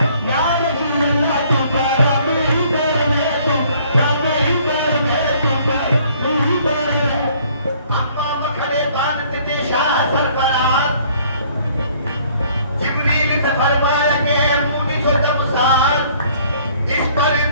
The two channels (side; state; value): both; inverted; correlation -0.59